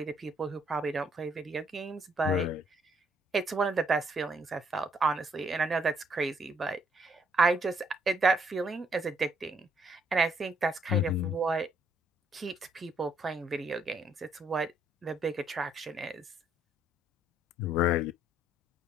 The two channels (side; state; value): both; normal; correlation 0.69